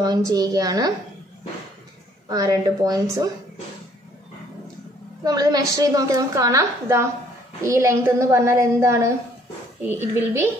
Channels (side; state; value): both; normal; correlation 0.62